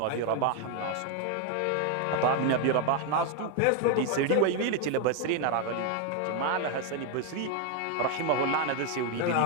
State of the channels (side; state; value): both; different; correlation 0.01